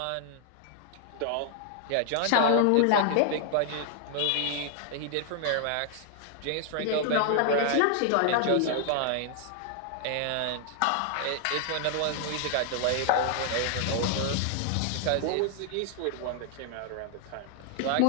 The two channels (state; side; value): different; both; correlation 0.00